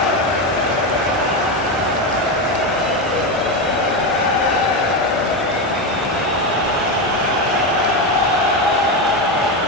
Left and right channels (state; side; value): normal; both; correlation 0.13